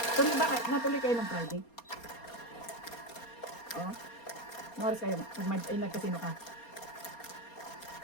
Tuloy ba? Natuloy kayo ng Friday? Oh. Ano oras kayo? Nagkasino ka?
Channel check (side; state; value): right; late; 4.3 ms